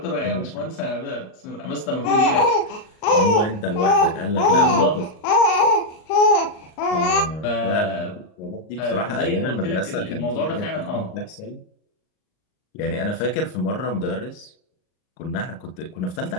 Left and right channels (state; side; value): late; right; 38 ms